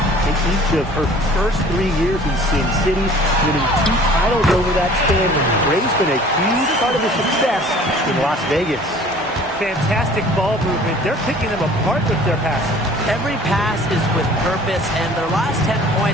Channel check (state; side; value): normal; both; correlation 0.49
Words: in each of her first 3 years in Sin City, winning 2 titles over that span. Gray's been a huge part of the success in Las Vegas. Fantastic ball movement. They're picking them apart with their passing. Every pass is with purpose, and their last 10